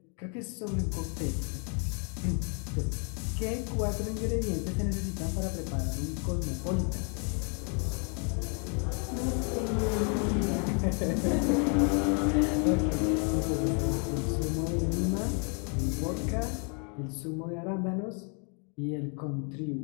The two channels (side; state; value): right; quieter; 38.6 dB